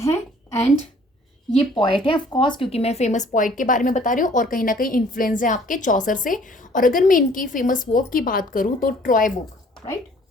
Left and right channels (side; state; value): both; normal; correlation 0.56